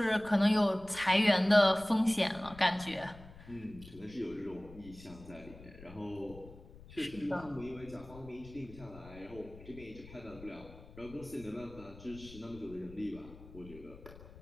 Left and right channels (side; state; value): left; noise; rumble, 18 dB below the sound